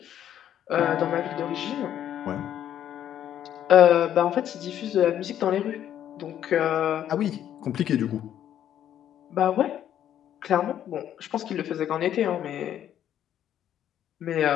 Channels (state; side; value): quieter; right; 10.7 dB